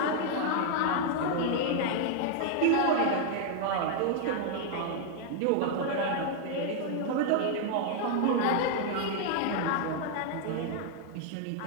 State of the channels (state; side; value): different; both; correlation 0.00